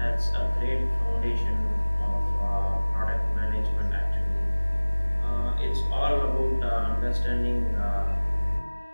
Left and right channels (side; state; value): both; inverted; correlation -1.00